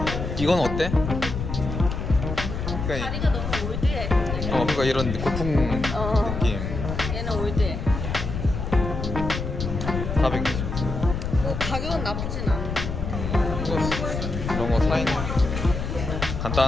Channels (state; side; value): noise; left; rumble, 4 dB below the sound